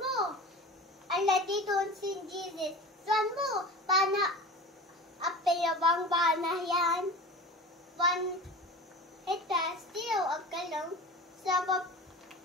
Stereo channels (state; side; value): normal; both; correlation 0.35